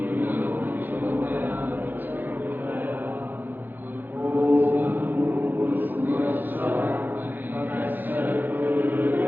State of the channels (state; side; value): late; left; 0.089 ms